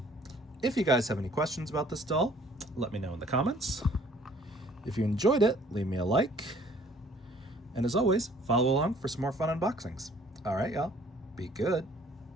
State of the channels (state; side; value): normal; both; correlation 0.57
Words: if you guys have any questions about this doll, let me know in the comments. If you enjoyed it, leave me a like. And as always, follow along for some more fun unboxings. All right, y'all. Be good.